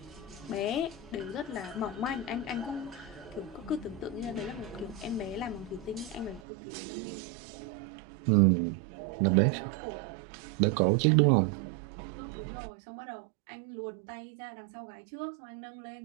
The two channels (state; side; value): drops out; left; at 6.4 s